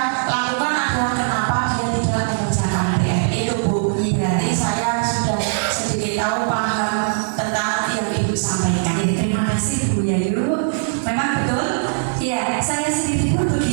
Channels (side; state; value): left; silent; 59 dB below the other